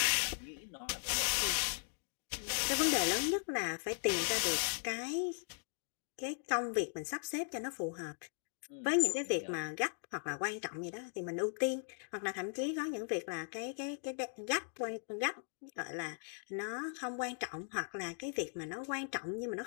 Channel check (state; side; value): silent; right; 52 dB below the other